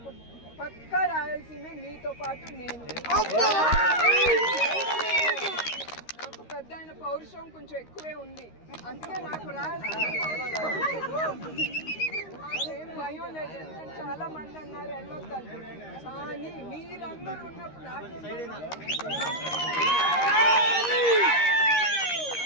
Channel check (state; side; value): late; right; 13 ms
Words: పక్కా రాయలసీమే, మీతో పాటు నేను. నాకు పెద్ద ఆయన పౌరుషం కొంచెం ఎక్కువే ఉంది, అందుకే నాకు రాయలసీమ ఏం భయం లేదు. ఎందుకంటే చాలా మంది అన్నారు వెళ్ళొద్దని, కానీ మీరందరూ ఉన్నప్పుడు నాకే